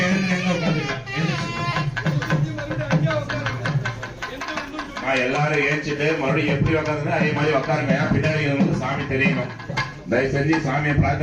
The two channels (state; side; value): identical; both; correlation 1.00